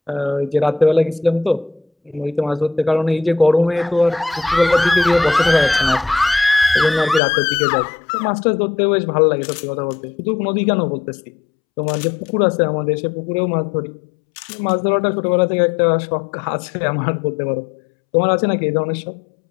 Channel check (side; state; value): right; drops out; at 7.2 s